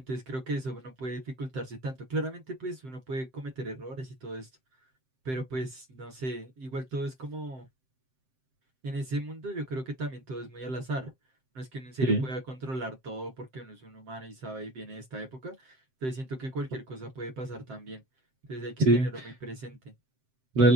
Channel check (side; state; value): left; late; 7.7 ms